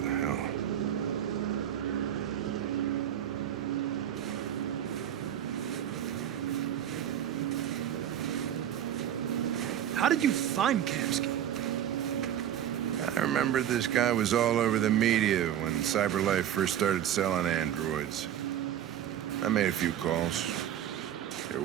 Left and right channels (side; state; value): left; quieter; 10.5 dB